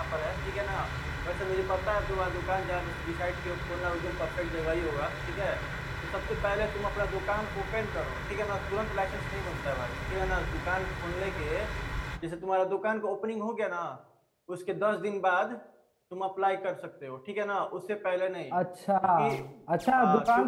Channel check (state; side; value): identical; both; correlation 1.00